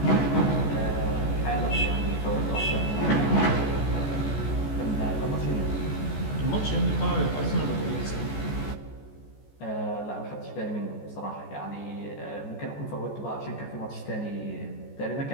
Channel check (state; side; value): late; right; 14 ms